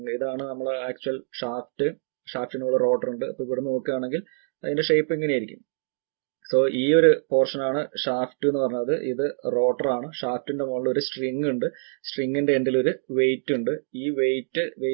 ഇതാണ് നമ്മളെ ആക്ച്വൽ ഷാഫ്റ്റിനുള്ള റോട്ടർ ഉണ്ട്. അപ്പൊ ഇവിടെ നോക്കുകയാണെങ്കിൽ അതിന്റെ ഷേപ്പ് ഇങ്ങനെയായിരിക്കും. സോ ഈ ഒരു പോർഷൻ ആണ് ഷാഫ്റ്റ് എന്ന് പറഞ്ഞത്. ഇത് റോട്ടർ ആണ്. ഷാഫ്റ്റിന്റെ മുകളിൽ ഒരു സ്ട്രിങ് ഉണ്ട്. സ്ട്രിങ്ങിന്റെ എൻഡിൽ ഒരു വെയിറ്റ് ഉണ്ട്. ഈ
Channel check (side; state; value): left; silent; digital silence